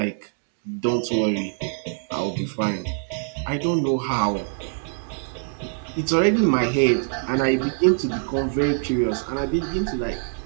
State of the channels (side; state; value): left; silent; 62 dB below the other